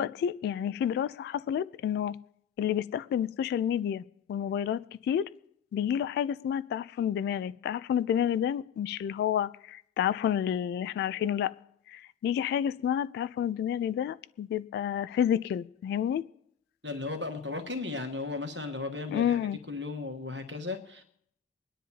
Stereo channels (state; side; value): quieter; right; 8.5 dB